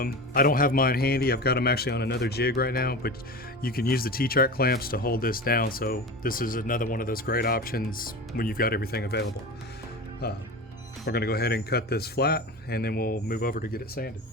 don't have mine handy. I've got them actually on another jig right now, but you can use the T-track clamps to hold this down. So this is another one of those great options when you've got everything available. We're going to go ahead and cut this flat, and then we'll move over to get it sanded.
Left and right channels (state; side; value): normal; both; correlation 0.29